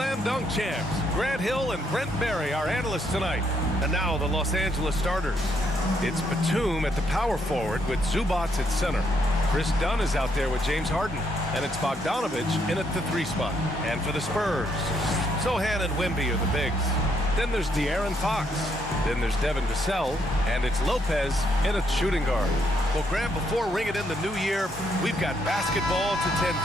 dunk champs, Grant Hill and Brent Barry, our analysts tonight. And now the Los Angeles starters. It's Batum at the power forward with Zubac at center. Chris Dunn is out there with James Harden. And it's Bogdanovich in at the 3 spot. And for the Spurs, Sohan and Wemby are the bigs. Then there's De'Aaron Fox. Then there's Devin Vassell. And it's Lopez in at shooting guard. Well, Grant, before ringing in the new year, we've got basketball to tend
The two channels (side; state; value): both; normal; correlation 0.74